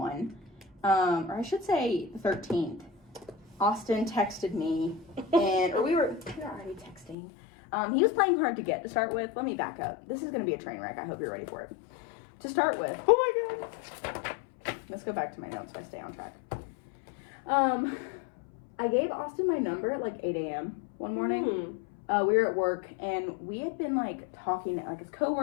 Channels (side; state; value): right; drops out; at 7.2 s